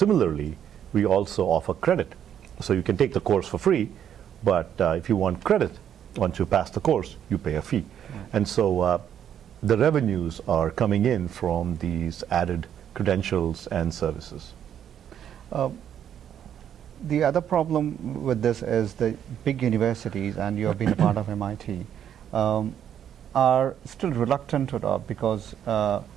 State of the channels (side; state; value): left; quieter; 9.5 dB